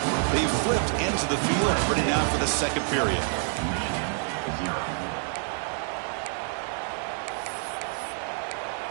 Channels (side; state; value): left; silent; 60 dB below the other